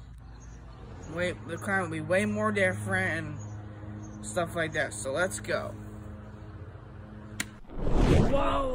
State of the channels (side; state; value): both; identical; correlation 1.00